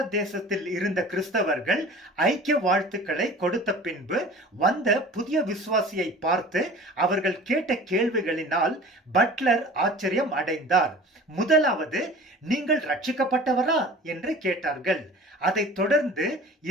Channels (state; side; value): normal; both; correlation 0.42